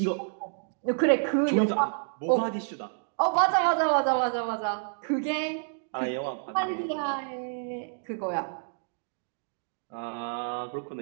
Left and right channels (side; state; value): left; silent; digital silence